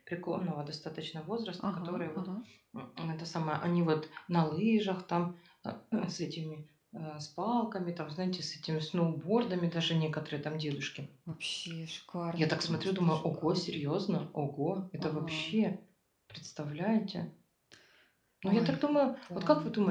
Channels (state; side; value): identical; both; correlation 1.00